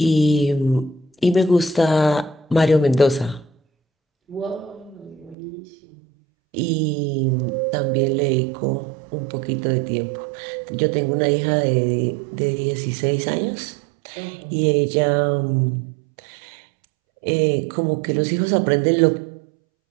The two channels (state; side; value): drops out; left; at 5.4 s